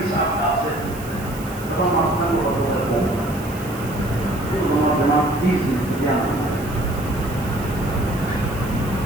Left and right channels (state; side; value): noise; right; hiss, 17 dB below the sound